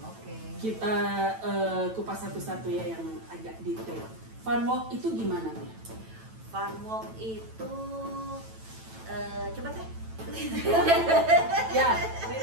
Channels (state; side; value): late; left; 9.1 ms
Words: Oke. Kita kupas satu-satu ya yang agak detail. Fun walk itu gimana nih? Fun walk itu coba Teh. Ya,